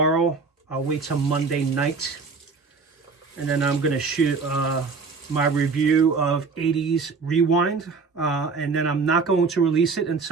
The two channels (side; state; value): left; quieter; 4.6 dB